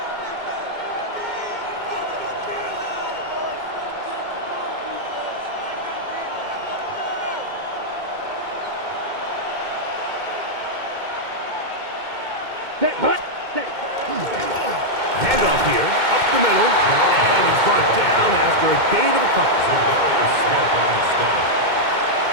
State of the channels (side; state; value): left; late; 2.2 ms